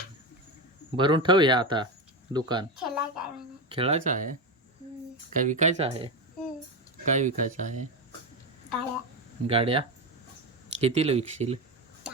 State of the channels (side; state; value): both; normal; correlation 0.15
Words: भरून ठेव या आता दुकान खेळायचं खेळायचं आहे काय विकायचं आहे काय विकायचं आहे गाड्या गाड्या कितीला विकशील